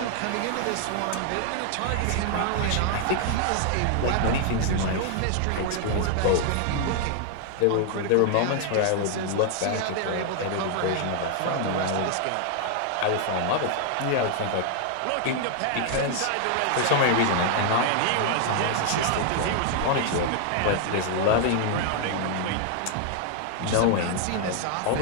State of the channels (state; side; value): different; both; correlation 0.00